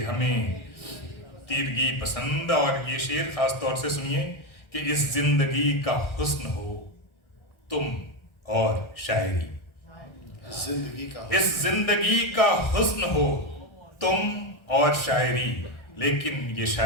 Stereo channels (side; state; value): right; late; 1.4 ms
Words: हमें तीरगी पसंद। और ये शेर खास तौर से सुनिए कि इस जिंदगी का हुस्न हो तुम और शायरी, इस जिंदगी का हुस्न हो तुम और शायरी, लेकिन ये